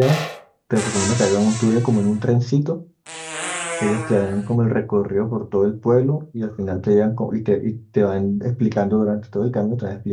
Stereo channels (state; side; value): identical; both; correlation 1.00